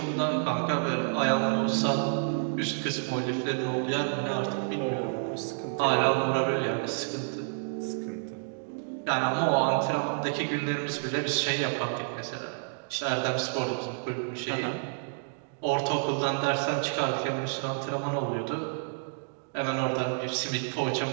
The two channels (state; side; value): silent; left; digital silence